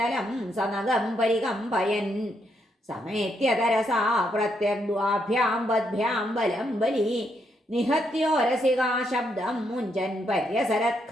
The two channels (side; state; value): both; normal; correlation 0.77